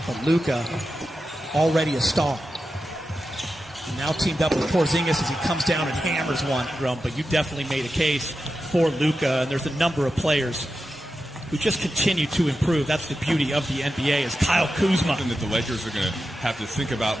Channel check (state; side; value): normal; both; correlation 0.91